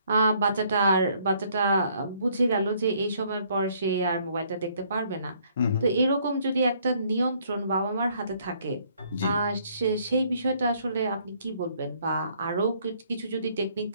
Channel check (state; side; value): inverted; both; correlation -0.64